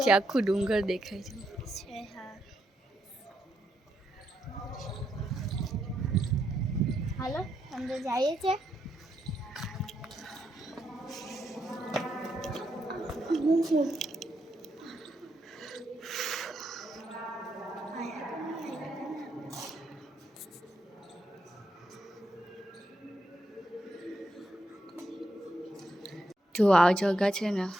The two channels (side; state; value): both; normal; correlation 0.80